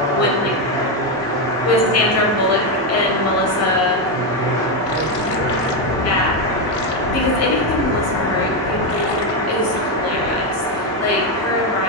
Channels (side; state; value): both; normal; correlation 0.07